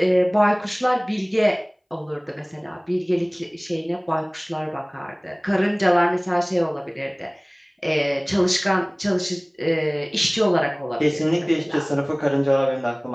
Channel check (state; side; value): identical; both; correlation 1.00